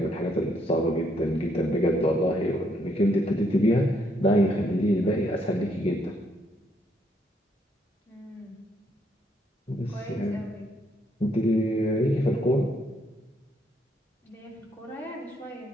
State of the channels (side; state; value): both; normal; correlation 0.72